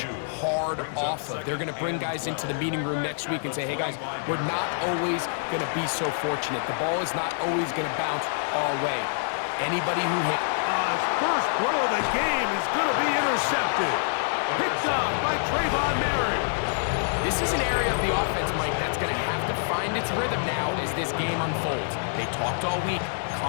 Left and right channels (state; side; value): silent; right; digital silence